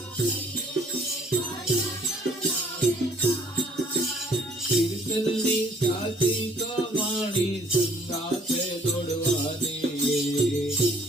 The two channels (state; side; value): normal; both; correlation 0.60